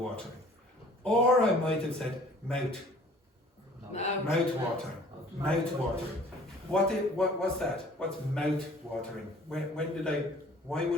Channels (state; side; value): normal; both; correlation 0.52